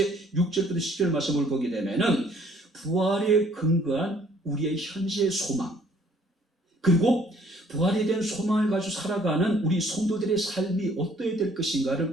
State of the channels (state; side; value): normal; both; correlation 0.60